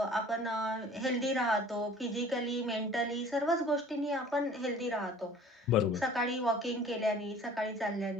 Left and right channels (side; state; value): both; normal; correlation 0.48